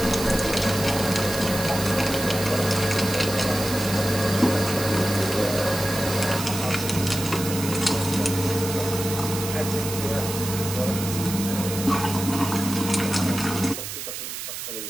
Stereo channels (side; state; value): right; noise; hiss, 7 dB below the sound